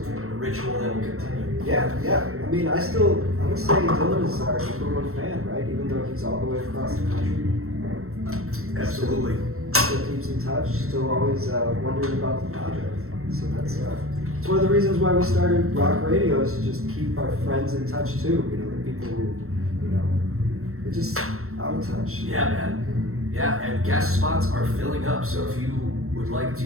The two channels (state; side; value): late; left; 0.63 ms